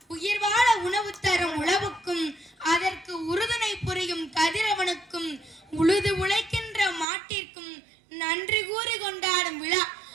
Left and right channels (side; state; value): left; drops out; at 7.1 s